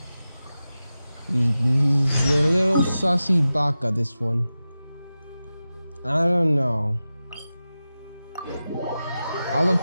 He's a little sussy baka, this one. I don't know. I'll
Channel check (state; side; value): inverted; both; correlation -0.94